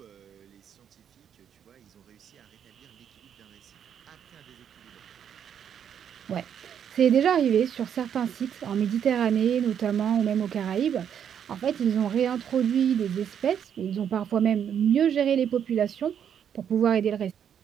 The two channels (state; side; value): quieter; left; 8.6 dB